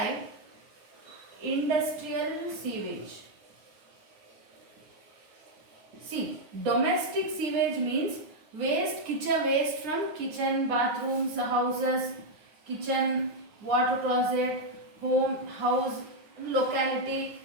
industrial sewage. See, domestic sewage means kitchen waste from kitchen, bathrooms, houses, kitchen, water closet, home, house, locality,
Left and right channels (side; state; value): left; late; 9.6 ms